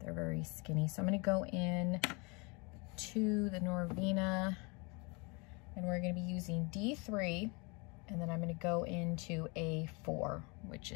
very skinny. So I'm going to go in to the Norvina, and we're going to be using D3, and then I'm going to go into A4, which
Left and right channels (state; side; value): quieter; right; 30.0 dB